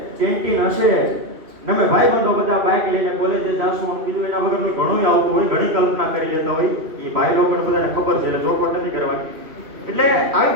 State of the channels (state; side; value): late; left; 2.7 ms